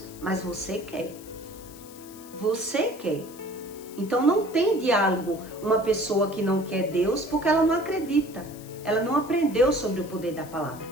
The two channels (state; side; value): noise; left; hiss, 20 dB below the sound